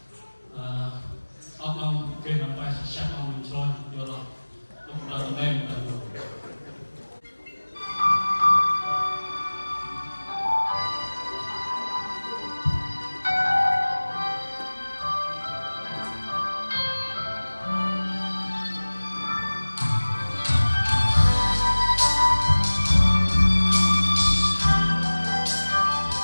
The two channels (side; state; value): both; inverted; correlation -1.00